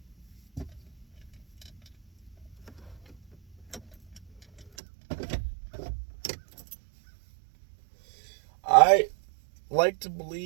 I like to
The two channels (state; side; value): drops out; left; at 4.7 s